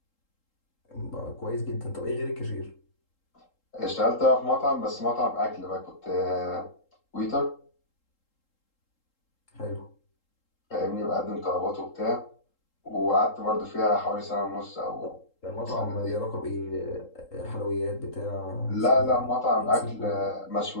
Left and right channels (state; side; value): late; right; 3.8 ms